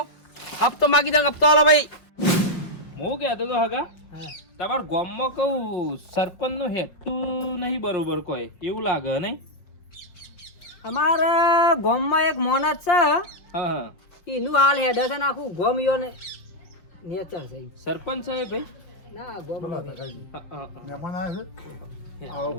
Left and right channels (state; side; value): late; right; 5.7 ms